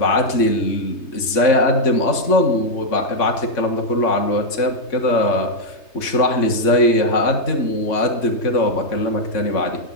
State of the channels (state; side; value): late; right; 3.3 ms